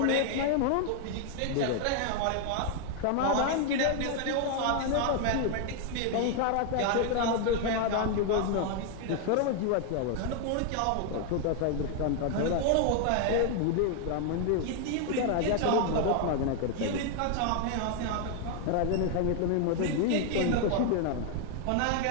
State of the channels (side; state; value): both; different; correlation 0.00